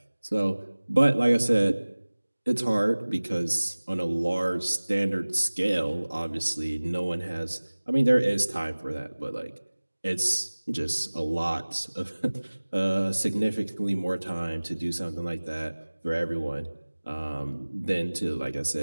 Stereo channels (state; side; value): inverted; both; correlation -1.00